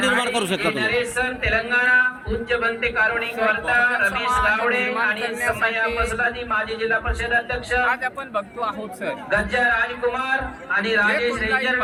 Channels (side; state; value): both; identical; correlation 1.00